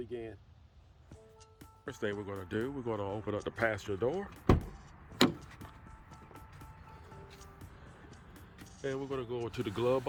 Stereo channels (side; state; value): both; identical; correlation 1.00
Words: First thing we're going to do, we're going to open up the passenger door. And we're going to go to the glove